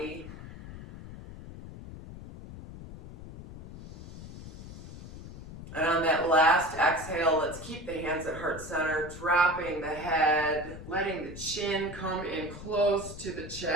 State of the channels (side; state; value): left; noise; rumble, 13 dB below the sound